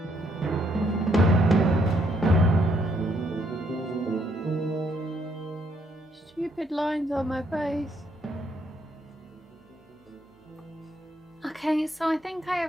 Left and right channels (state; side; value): normal; both; correlation 0.72